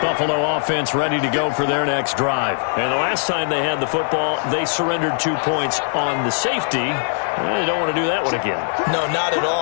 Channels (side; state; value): right; silent; digital silence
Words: Buffalo offense ready to go for their next drive. And the last time they had the football, they surrendered 2 points on the safety. They don't want to do that one again. No, not at